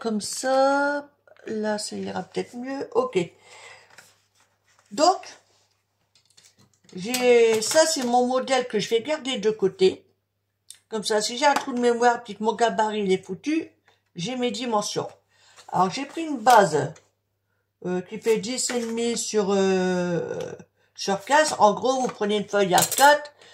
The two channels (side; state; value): both; identical; correlation 1.00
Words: ça? Là, ça ira peut-être mieux. Ok. Donc, ça, c'est mon modèle que je vais garder de côté. Comme ça, si j'ai un trou de mémoire puis que mon gabarit il est foutu, j'ai mes dimensions. Alors, j'ai pris une base qui fait 10,5 sur 15. En gros, vous prenez une feuille A4,